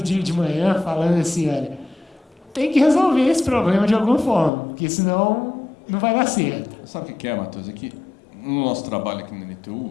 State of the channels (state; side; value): drops out; right; at 4.5 s